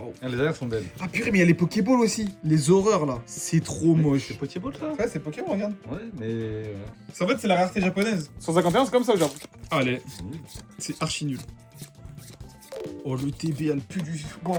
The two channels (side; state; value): both; identical; correlation 1.00